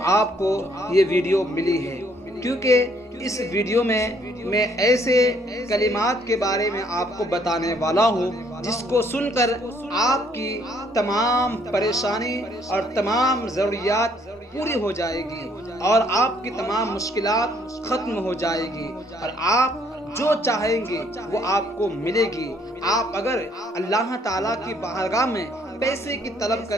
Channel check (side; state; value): both; normal; correlation 0.65